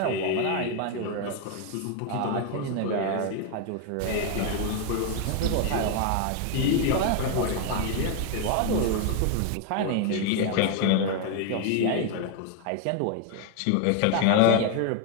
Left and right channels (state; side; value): different; both; correlation 0.01